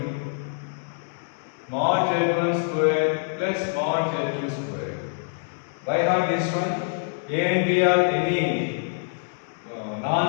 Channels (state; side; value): silent; right; 62 dB below the other